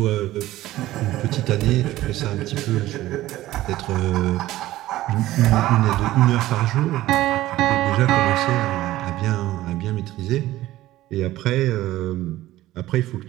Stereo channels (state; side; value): quieter; left; 15.7 dB